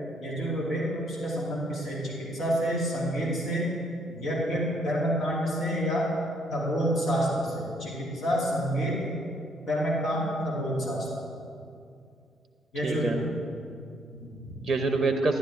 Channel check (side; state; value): both; normal; correlation 0.67